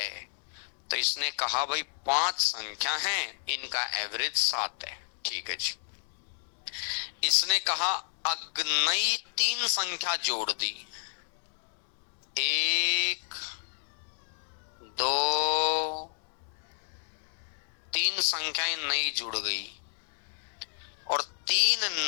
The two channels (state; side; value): silent; right; digital silence